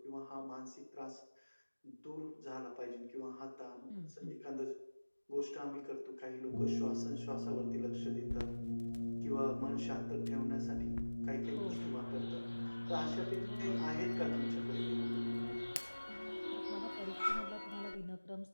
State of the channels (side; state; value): both; inverted; correlation -1.00